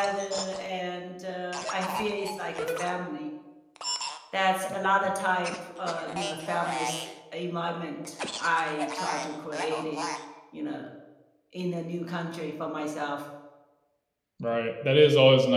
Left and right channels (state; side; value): identical; both; correlation 1.00